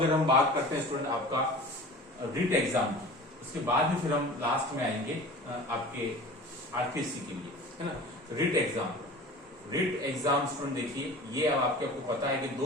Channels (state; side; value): normal; both; correlation 0.39